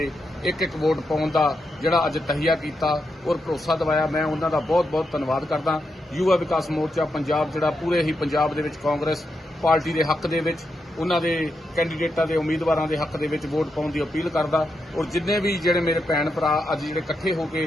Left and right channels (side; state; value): both; normal; correlation 0.84